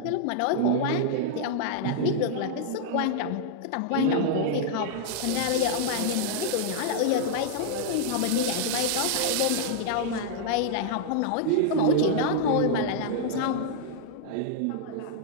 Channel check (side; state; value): both; different; correlation -0.01